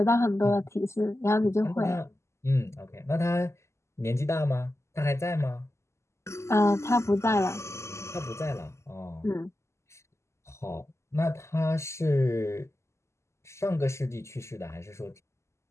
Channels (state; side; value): late; right; 0.13 ms